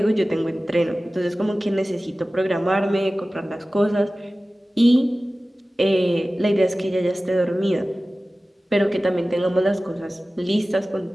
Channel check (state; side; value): normal; both; correlation 0.96